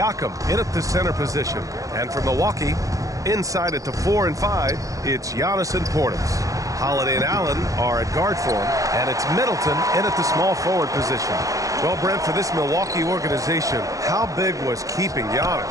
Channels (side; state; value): left; late; 0.16 ms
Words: in at the center position. And from Milwaukee, inside at the 4 and 5, it's Giannis and Portis. Holiday and Allen are at guard form, and it's Middleton in at the small forward position. Well, Brent, for this Milwaukee organization, how big was keeping Giannis?